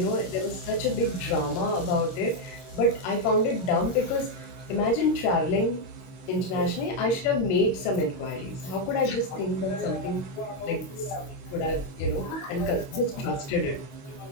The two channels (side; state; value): right; late; 22 ms